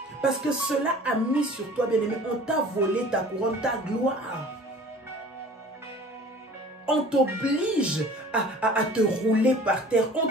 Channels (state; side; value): normal; both; correlation 0.46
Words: Parce que cela a mis sur toi, bien aimé, on t'a volé ta couronne, ta gloire. On t'oblige à te rouler par terre. On